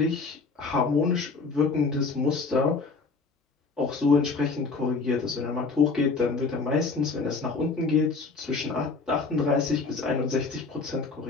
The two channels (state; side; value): quieter; right; 4.3 dB